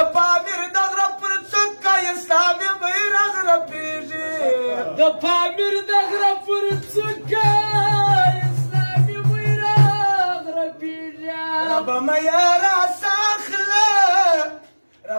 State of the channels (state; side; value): inverted; both; correlation -1.00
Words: پامیر د غره پر څوکه اسلامي بیرغ رپېږي د پامیر د غره پر څوکه اسلامي بیرغ رپېږي ربه مه یې راساخله